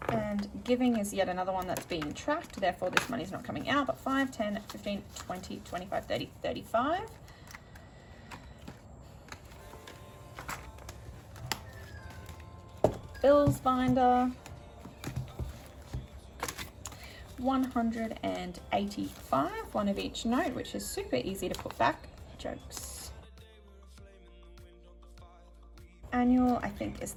And giving is yet another one that's being tracked, therefore this money's not coming out, but 5, 10, 15, 20, 25, 30, 35. Bills binder, 185, one of each note, which is super easy to put back. Jokes. Annual, I think, is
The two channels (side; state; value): both; identical; correlation 1.00